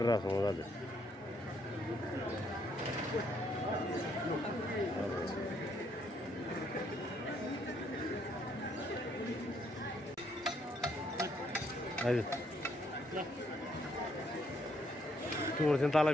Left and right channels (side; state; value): both; normal; correlation 0.71